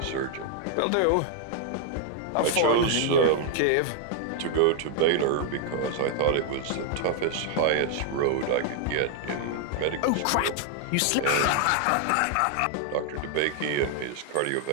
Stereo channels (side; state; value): both; different; correlation 0.00